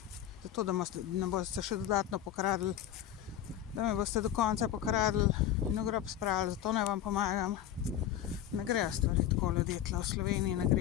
zato, da me boste še dodatno pokradli, da me boste do konca pokradli in v grob spravili, zato ne vam pomagam. Ne grejo stvari tako, ljudje, tle v Sloveniji ne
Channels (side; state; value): right; quieter; 11.1 dB